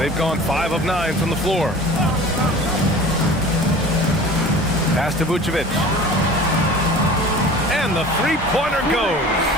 gone 5 of 9 from the floor. Pass to Vucevic. And the three-pointer goes.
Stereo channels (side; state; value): both; normal; correlation 0.41